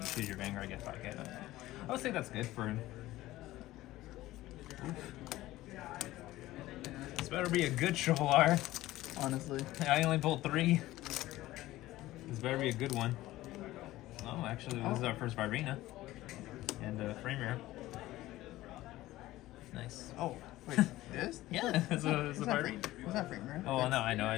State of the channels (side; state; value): right; quieter; 16.5 dB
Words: choose your Vanguard, get 5 hit. I would say that's good for him. This better be a good triple R. honestly. I only pulled 3. This better be a good one. Oh, actually, this is our first Virena. And frame rare. Nice. Oh, wait, this? Yeah, it's a Virena. Was that frame rare? Oh, no, I know.